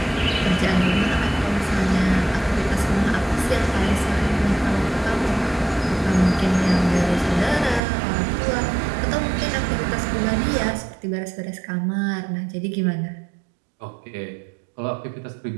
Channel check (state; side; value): drops out; left; at 7.8 s